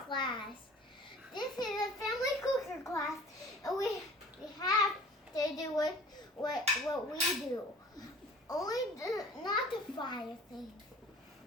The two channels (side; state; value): both; normal; correlation 0.46